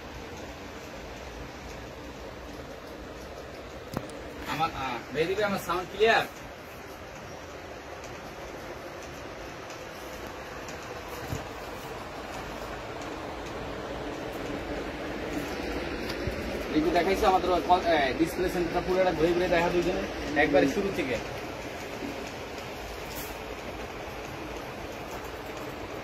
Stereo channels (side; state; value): both; identical; correlation 1.00